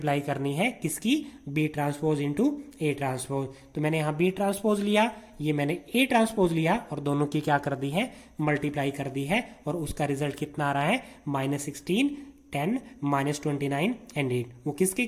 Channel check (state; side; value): identical; both; correlation 1.00